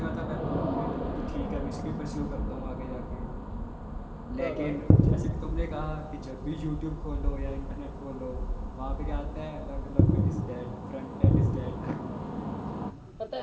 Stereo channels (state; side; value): identical; both; correlation 1.00